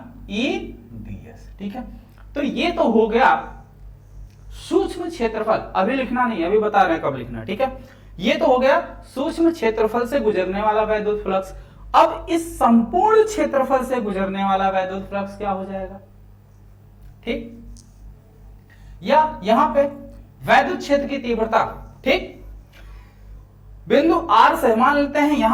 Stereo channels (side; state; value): both; identical; correlation 1.00